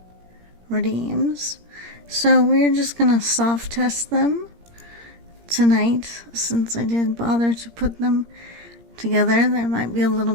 redeems. So we're just gonna soft test them tonight, since I did bother to put them together. There might be a little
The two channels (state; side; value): late; left; 17 ms